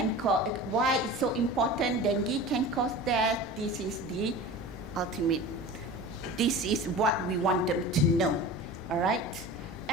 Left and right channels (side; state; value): both; normal; correlation 0.35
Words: cause, why it's so important, dengue can cause death, this is the ultimate. This is what we want them to know, all right?